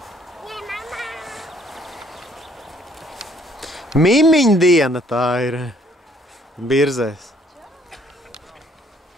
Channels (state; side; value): normal; both; correlation 0.63